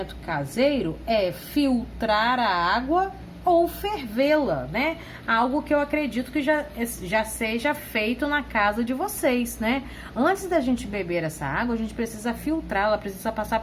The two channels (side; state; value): both; identical; correlation 1.00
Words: caseiro é filtrar a água ou fervê-la, né? Algo que eu acredito que já seja feito na casa de vocês, né? Antes da gente beber essa água, a gente precisa filtrá-la, precisa passar